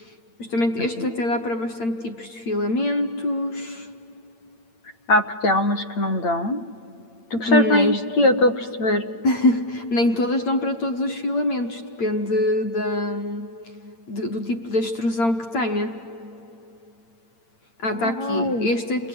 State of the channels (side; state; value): right; late; 8.8 ms